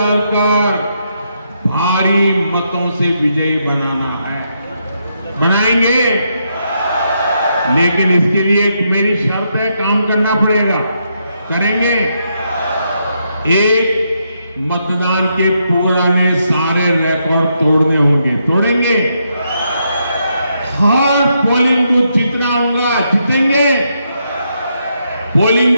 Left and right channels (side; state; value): both; inverted; correlation -0.79